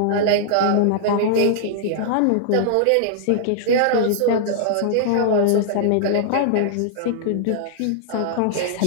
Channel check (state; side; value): different; both; correlation -0.01